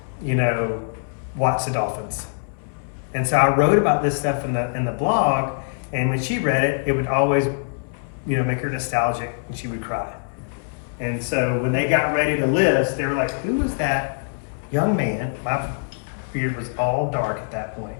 you know, watch the dolphins. And so I wrote about this stuff in the blog, and when she read it, it would always, you know, make her nostalgic, and she would cry. And so when they got ready to list, they were like, who was that young man? My beard was all dark at that point.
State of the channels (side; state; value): right; silent; 63 dB below the other